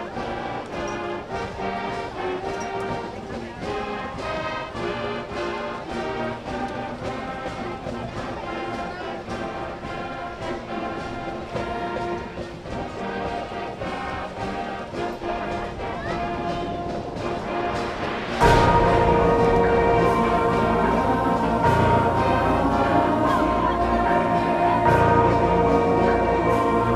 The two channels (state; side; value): identical; both; correlation 1.00